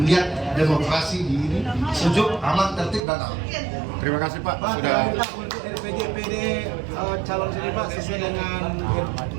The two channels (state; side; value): drops out; left; at 3.0 s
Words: demokrasi di ini sejuk, aman, tertib, dan aman. Terima kasih Pak sudah. Untuk RPJPD calon sini Pak sesuai dengan